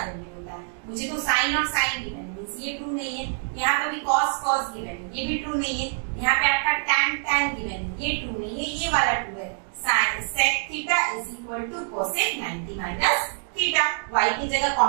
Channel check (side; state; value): left; silent; digital silence